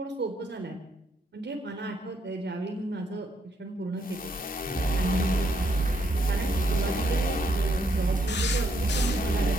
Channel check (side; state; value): both; normal; correlation 0.75